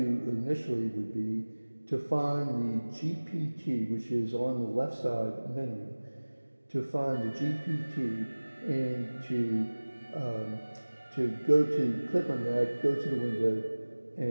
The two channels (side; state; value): both; inverted; correlation -1.00